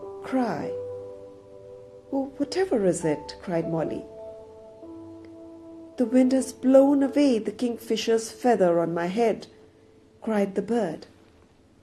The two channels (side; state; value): both; identical; correlation 1.00